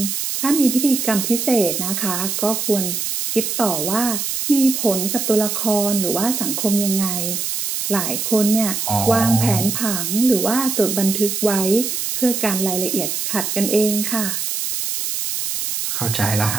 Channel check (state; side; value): noise; right; hiss, 2 dB below the sound